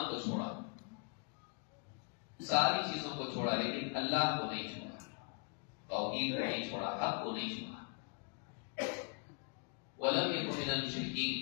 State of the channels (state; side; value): quieter; right; 38.1 dB